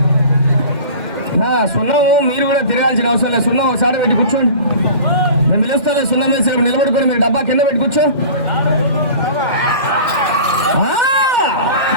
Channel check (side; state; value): left; late; 2.1 ms